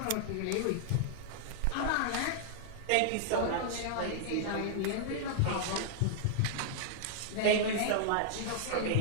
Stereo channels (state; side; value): different; both; correlation -0.01